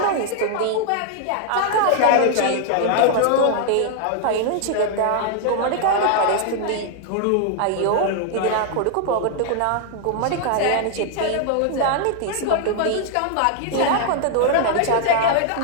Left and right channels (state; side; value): different; both; correlation 0.00